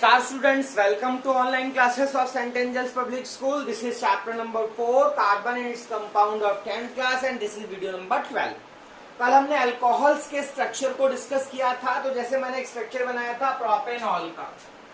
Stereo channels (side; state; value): both; identical; correlation 1.00